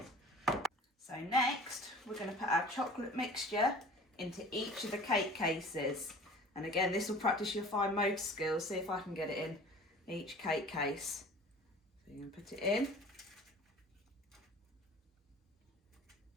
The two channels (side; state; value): both; normal; correlation 0.44